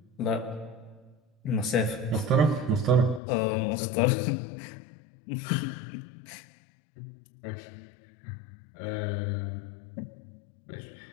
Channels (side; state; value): right; drops out; at 3.2 s